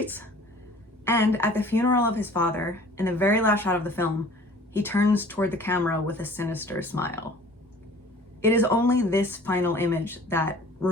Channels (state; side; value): normal; both; correlation 0.48